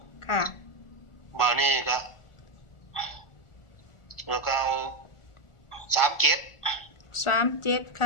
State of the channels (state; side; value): late; right; 1.4 ms